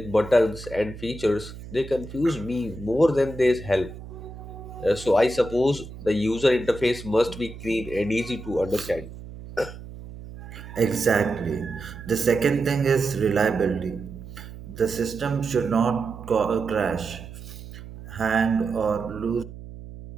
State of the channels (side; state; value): right; noise; hum, 14 dB below the sound